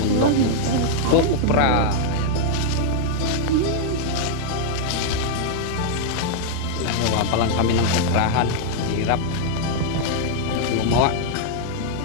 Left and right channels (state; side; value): different; both; correlation 0.00